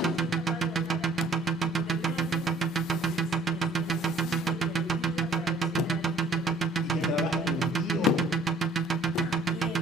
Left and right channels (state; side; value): normal; both; correlation 0.57